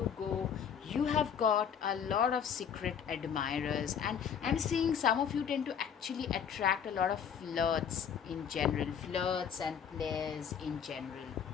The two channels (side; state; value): right; quieter; 7.8 dB